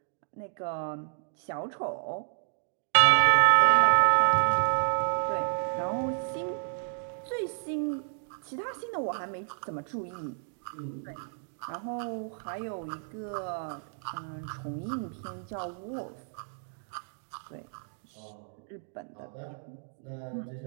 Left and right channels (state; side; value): silent; left; digital silence